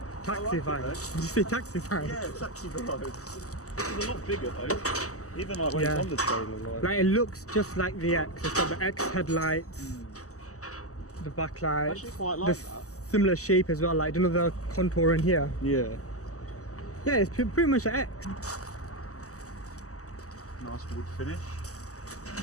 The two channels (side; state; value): right; late; 0.66 ms